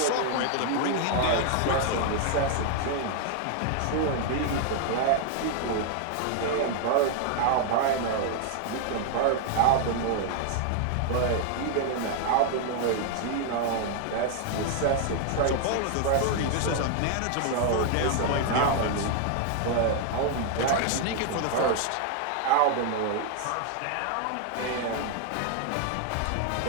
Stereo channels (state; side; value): different; both; correlation 0.00